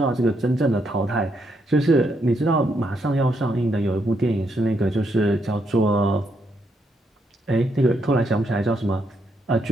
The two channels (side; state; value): both; normal; correlation 0.77